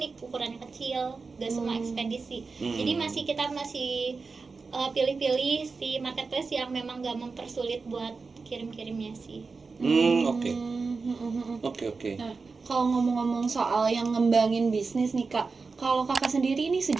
ukurannya kecil, nggak semua ekspedisi. Jadi kita masih pilih-pilih si marketplace yang memang nggak mempersulit buat kirim-kirimnya sih. Oke. Nah, kalau ngomong-ngomong soal yang ngembangin bisnis nih Kak, kalau Kakak sendiri ini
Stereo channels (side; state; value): left; quieter; 4.4 dB